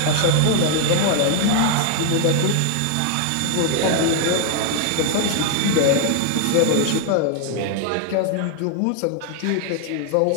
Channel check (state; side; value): different; both; correlation 0.00